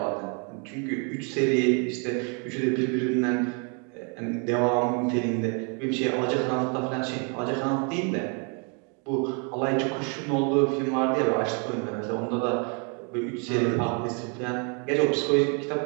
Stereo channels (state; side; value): quieter; left; 36.5 dB